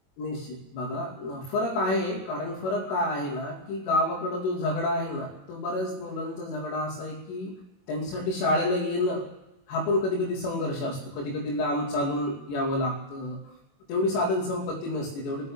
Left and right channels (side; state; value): right; late; 21 ms